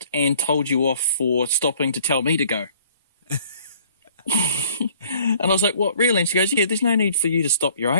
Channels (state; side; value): inverted; both; correlation -0.57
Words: and told you off for stopping to tell me to go. And I was like, what, really? And she goes, yeah, there's no need for you to stop your